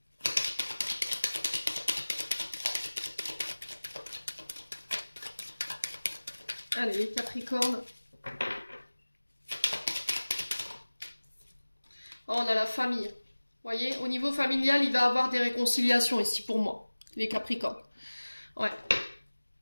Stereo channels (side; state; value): both; inverted; correlation -1.00